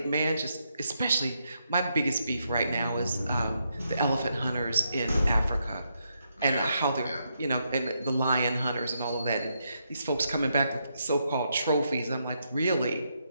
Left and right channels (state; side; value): inverted; both; correlation -0.80